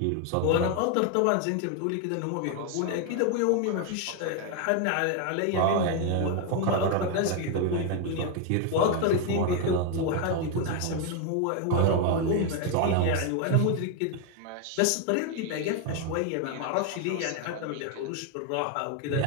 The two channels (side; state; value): both; different; correlation 0.01